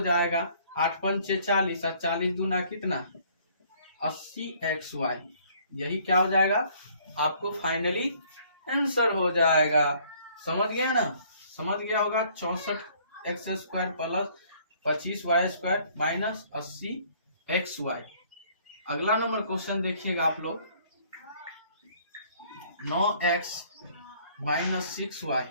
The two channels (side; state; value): both; inverted; correlation -0.60